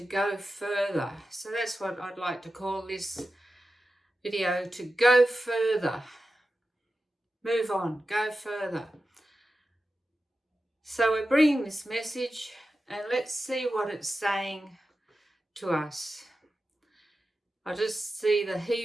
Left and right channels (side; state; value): both; normal; correlation 0.92